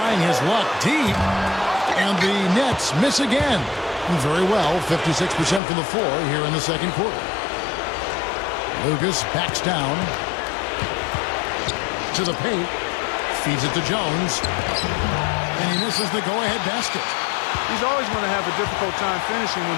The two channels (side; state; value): right; drops out; at 5.6 s